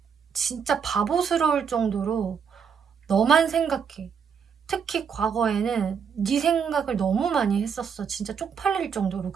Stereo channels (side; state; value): left; quieter; 6.8 dB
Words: 진짜 바보스러울 정도로 너만 생각해. 특히 과거에는 네 생각을 너무 많이 했었어. 진짜 쪽팔릴 정도로